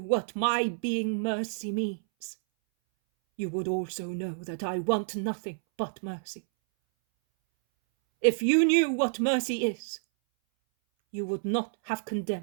my being mercy means, you would also know that I want nothing but mercy. If you knew what mercy is, you would not have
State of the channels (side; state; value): left; silent; 59 dB below the other